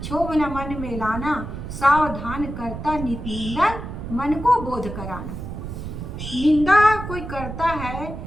क्षोभ न मन में लाना, सावधान करता नित निंदन मन को बोध कराना। निंदा कोई करता है,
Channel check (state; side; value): noise; right; rumble, 8 dB below the sound